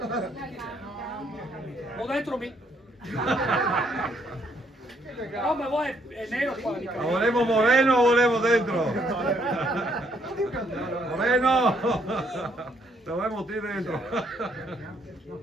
Ho dentro mi. No, ma voi è nero qua. Ma volevo Moreno o volevo dentro? Moreno! Dovevamo ti dentro.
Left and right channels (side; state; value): both; normal; correlation 0.70